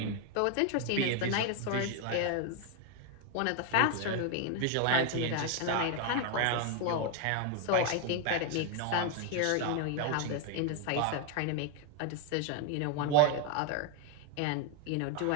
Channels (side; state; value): both; different; correlation 0.01